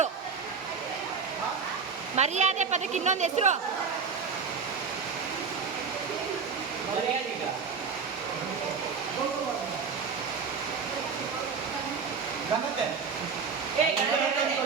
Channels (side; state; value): left; quieter; 5.7 dB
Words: ಮರ್ಯಾದೆ ಪದಕ್ಕೆ ಇನ್ನೊಂದು ಹೆಸರು.